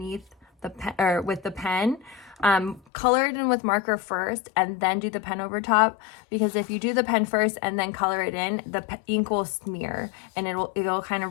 the pen, or with the pen, color it in with marker first and then do the pen over top, because if you do the pen first and then color it in, the ink will smear and it'll kind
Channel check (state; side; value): drops out; right; at 2.8 s